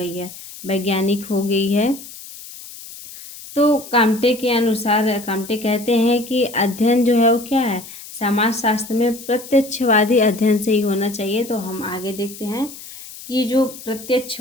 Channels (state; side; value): noise; left; hiss, 15 dB below the sound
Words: है, वैज्ञानिक हो गई है। तो काम्टे के अनुसार, काम्टे कहते हैं कि अध्ययन जो है वो क्या है, समाज शास्त्र में प्रत्यक्षवादी अध्ययन से ही होना चाहिए। तो हम आगे देखते हैं कि जो